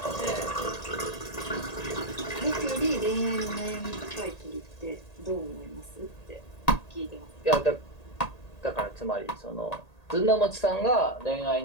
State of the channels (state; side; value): late; right; 1.8 ms